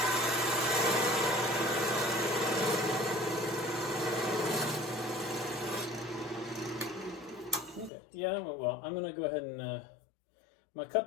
Yeah, that went well. I'm going to go ahead and I'm going to cut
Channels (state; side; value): drops out; right; at 7.9 s